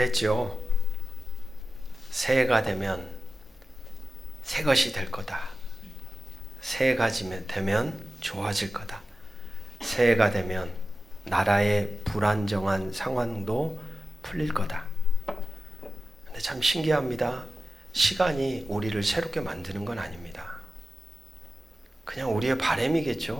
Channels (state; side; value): normal; both; correlation 0.94